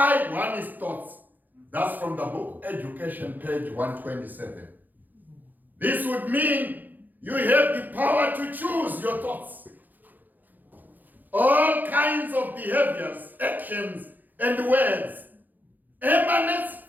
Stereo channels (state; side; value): late; left; 0.085 ms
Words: one's thoughts. That's from the book Education, page 127. This would mean you have the power to choose your thoughts. All kinds of behaviors, actions, and words emanates